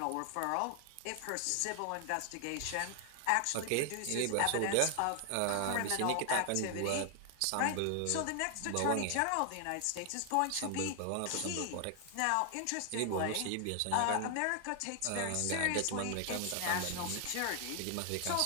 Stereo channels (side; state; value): both; different; correlation 0.00